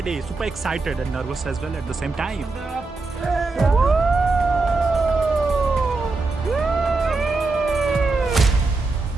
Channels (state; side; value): quieter; left; 3.6 dB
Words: super excited and nervous as well at the same time.